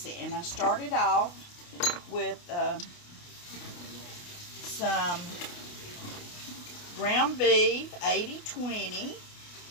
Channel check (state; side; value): late; right; 28 ms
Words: it. And I started off with some ground beef, 80/20,